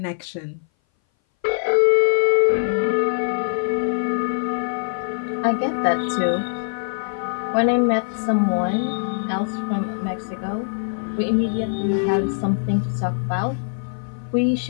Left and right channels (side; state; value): right; silent; 59 dB below the other